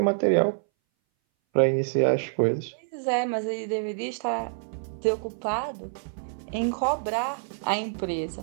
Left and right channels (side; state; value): left; silent; 59 dB below the other